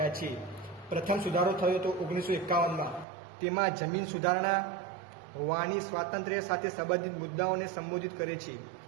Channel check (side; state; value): left; drops out; at 3.1 s